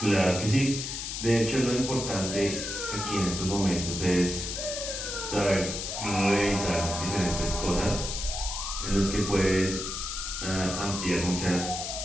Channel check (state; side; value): noise; left; hiss, 5 dB below the sound